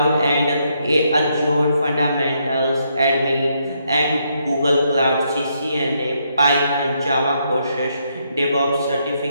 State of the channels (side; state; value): both; inverted; correlation -0.76